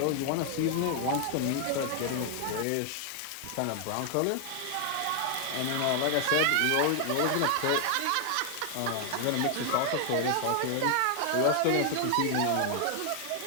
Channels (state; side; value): different; both; correlation 0.00